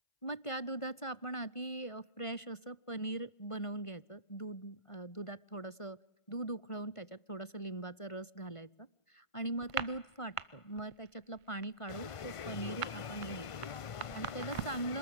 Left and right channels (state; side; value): late; right; 1.5 ms